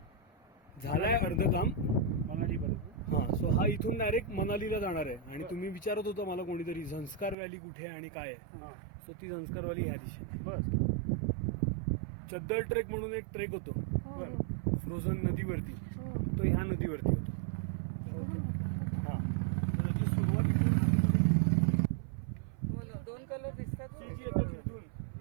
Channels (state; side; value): drops out; left; at 7.4 s